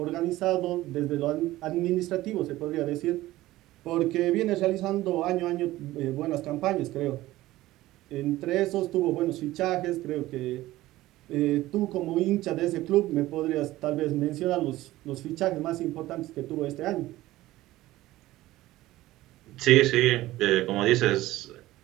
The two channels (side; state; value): left; quieter; 16.7 dB